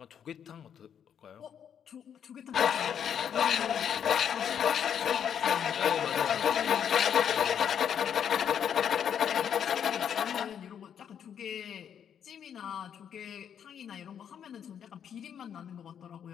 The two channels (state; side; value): quieter; right; 8.5 dB